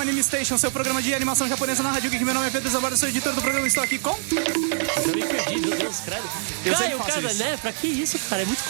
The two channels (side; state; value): left; silent; 63 dB below the other